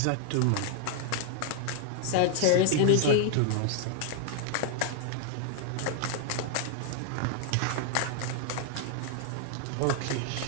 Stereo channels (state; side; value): different; both; correlation 0.00